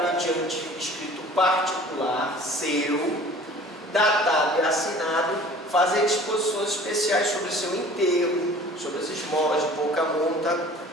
mediante escrito particular seu, datado e assinado, fazer disposições especiais sobre seu enterro, sobre as esmolas de pouca monta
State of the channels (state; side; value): normal; both; correlation 0.47